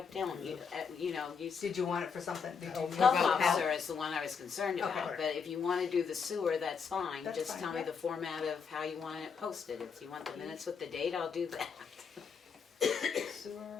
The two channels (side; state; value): right; quieter; 6.1 dB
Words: don't. You know, you. Did you want it for something? Did you Health about officer health? is the one I was concerned about, Okay. but if you wanna do the sewer, that's fine. That's Just fine, tell me yeah. the format of how you want it posted. If you want the minutes with the date, I'll do that.